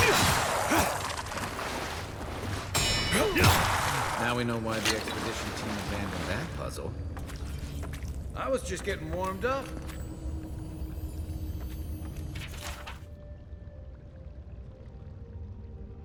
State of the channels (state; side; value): identical; both; correlation 1.00